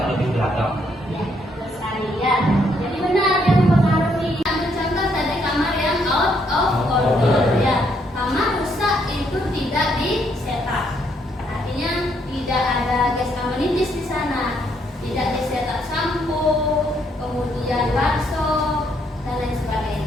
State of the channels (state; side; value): normal; both; correlation 0.72